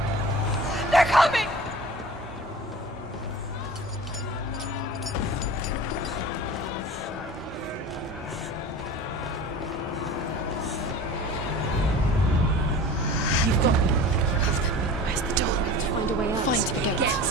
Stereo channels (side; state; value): both; normal; correlation 0.38